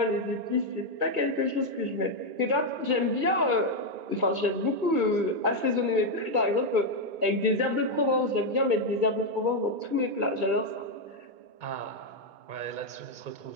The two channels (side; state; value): left; late; 2.2 ms